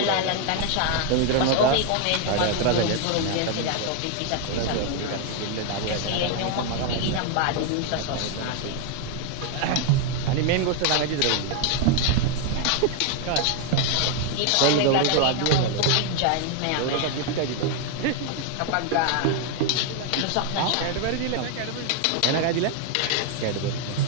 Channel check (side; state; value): both; different; correlation 0.01